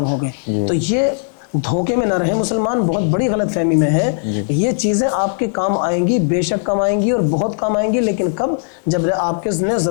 ہو گئے۔ تو یہ دھوکے میں نہ رہے مسلمان، بہت بڑی غلط فہمی میں ہے۔ یہ چیزیں آپ کے کام آئیں گی، بے شک کام آئیں گی اور بہت کام آئیں گی، لیکن کب؟ جب آپ کے نے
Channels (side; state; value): right; silent; digital silence